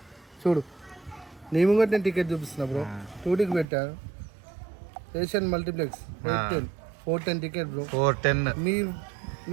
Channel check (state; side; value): drops out; left; at 3.7 s